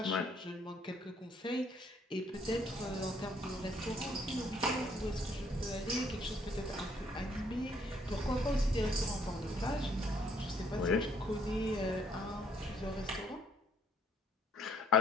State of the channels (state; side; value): normal; both; correlation 0.65